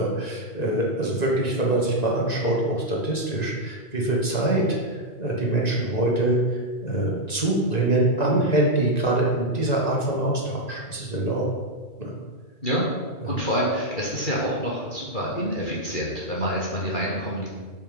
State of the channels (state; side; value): late; right; 1.9 ms